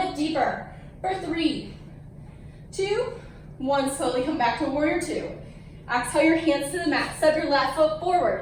deeper. For 3, 2, 1, slowly come back to warrior two. Exhale your hands to the mat, step your left foot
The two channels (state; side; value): identical; both; correlation 1.00